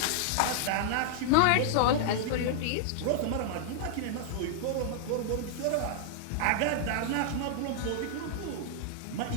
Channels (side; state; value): both; different; correlation -0.01